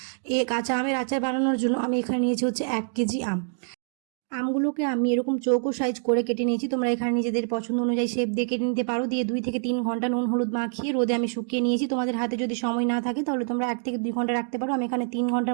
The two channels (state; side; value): silent; left; digital silence